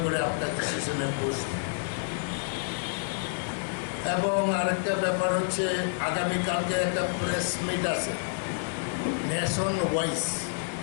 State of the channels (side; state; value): right; silent; digital silence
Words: করে আপনার ডিসিশনে বসব। এবং আরেকটা ব্যাপার হচ্ছে, আগামীকালকে একটা প্রেস মিট আছে নেশন ওয়াইজ।